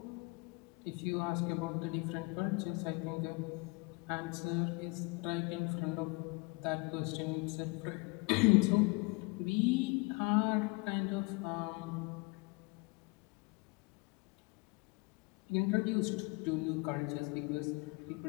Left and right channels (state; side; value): quieter; right; 28.5 dB